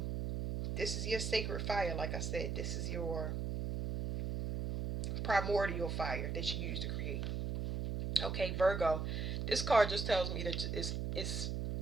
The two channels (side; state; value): right; noise; hum, 2 dB below the sound